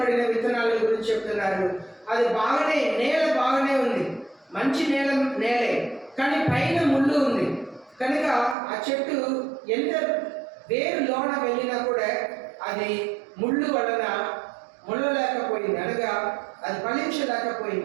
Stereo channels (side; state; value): left; drops out; at 8.6 s